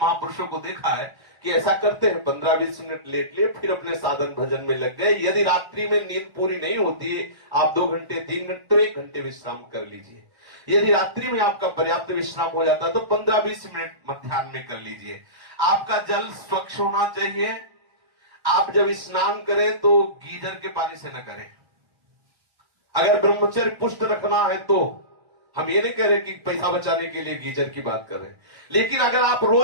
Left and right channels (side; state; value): left; late; 1.3 ms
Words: को देखा है कि ऐसा करते हैं, 15-20 मिनट लेट लिए, फिर अपने साधन भजन में लग गए। यदि रात्रि में नींद पूरी नहीं होती है, आप 2 घंटे 3 घंटे तो 1 घंटे विश्राम कर लीजिए। यदि रात्रि में आपका पर्याप्त विश्राम हो जाता है तो 15-20 मिनट मध्याह्न में कर लीजिए। आपका जल स्वच्छ होना चाहिए। आप जब स्नान करें तो गीजर के पानी से न करें। अगर ब्रह्मचर्य पुष्ट रखना है तो, हम ये नहीं कह रहे कि पैसा बचाने के लिए गीजर की बात कर रहे हैं, लेकिन अगर आप